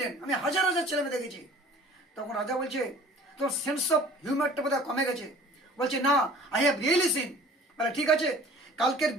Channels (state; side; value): normal; both; correlation 0.48